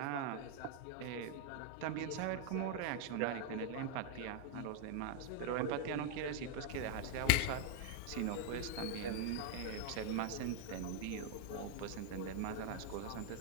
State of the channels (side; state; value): both; different; correlation 0.00